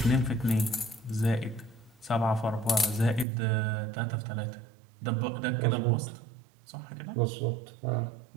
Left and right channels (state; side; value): drops out; left; at 3.2 s